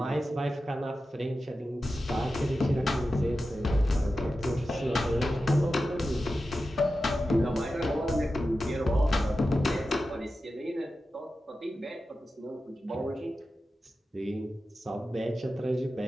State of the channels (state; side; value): normal; both; correlation 0.92